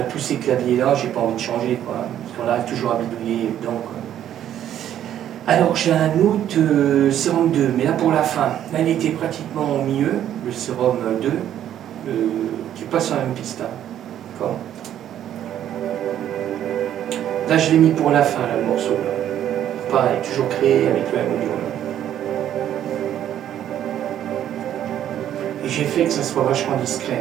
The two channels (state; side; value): quieter; left; 10.9 dB